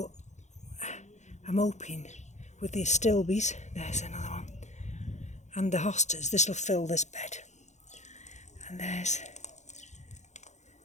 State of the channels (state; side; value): late; right; 0.34 ms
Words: I'm hoping with the astilbes, there's another one, and the hostas, this will fill this bed. And there's